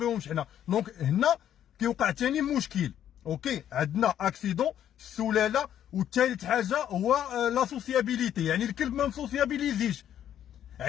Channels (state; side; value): quieter; right; 10.5 dB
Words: حنا. دونك هنا كيوقع ثاني مشكل. اوكي، عندنا اكسيدون، السلاله، والثالث حاجه هو لا سوسيابيليتي، يعني الكلب ما مسوسيابيليزيش.